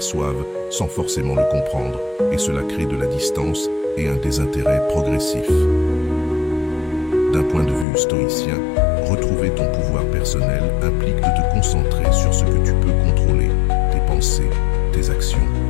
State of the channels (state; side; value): drops out; right; at 7.9 s